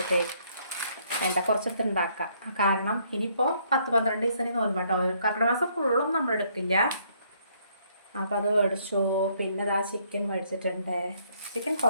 കുറച്ചെടുത്ത് ഉണ്ടാക്കാം. കാരണം ഇനിയിപ്പോൾ 10-12 ദിവസം നോക്കുമ്പോൾ കേട്ടോ. കർക്കിടക മാസം ഫുള്ളൊന്നും നമ്മൾ എടുക്കില്ല. അപ്പോൾ അത് മേടിച്ചു. പിന്നെ ഇതാ ചിക്കൻ മേടിച്ചിട്ടുണ്ട്. ചിക്കൻ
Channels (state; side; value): inverted; both; correlation -0.67